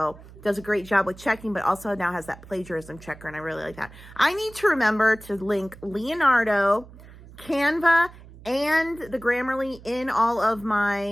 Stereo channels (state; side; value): noise; right; hum, 19 dB below the sound